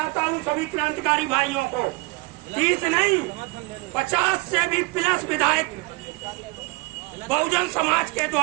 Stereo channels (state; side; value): quieter; left; 25.8 dB